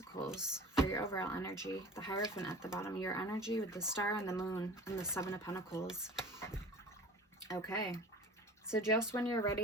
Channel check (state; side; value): normal; both; correlation 0.40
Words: for your overall energy. The Hierophant at the bottom, your energy with the Star and the Moon and the 7 of Pentacles. Okay, so just when you're